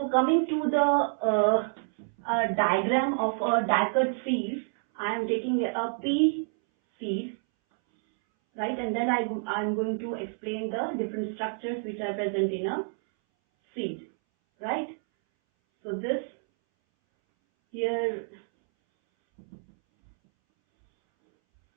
coming to the diagram of a dicot seed, I am taking a pea seed, right? And then I'm going to explain the different structures which are present in a seed, right? So this here,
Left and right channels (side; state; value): left; silent; 59 dB below the other